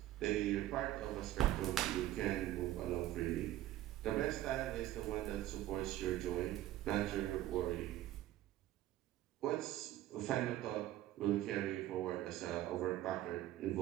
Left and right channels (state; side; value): quieter; left; 14.2 dB